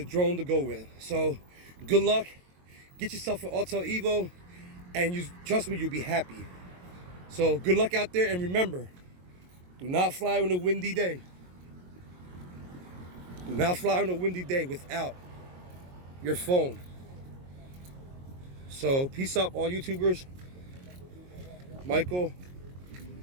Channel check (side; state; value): left; late; 22 ms